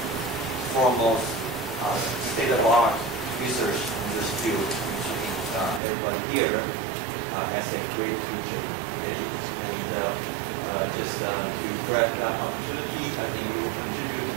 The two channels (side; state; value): left; drops out; at 5.8 s